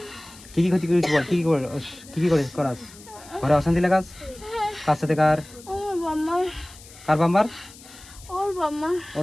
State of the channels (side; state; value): left; noise; hiss, 20 dB below the sound